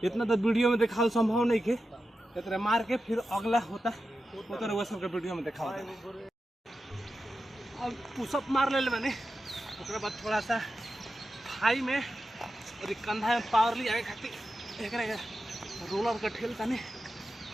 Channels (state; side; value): normal; both; correlation 0.91